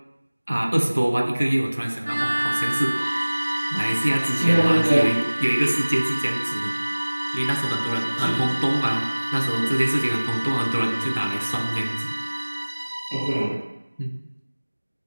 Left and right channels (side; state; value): both; inverted; correlation -1.00